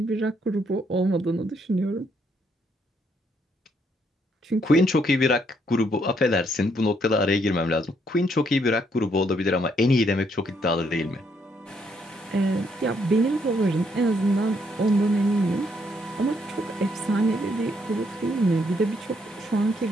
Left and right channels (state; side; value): normal; both; correlation 0.72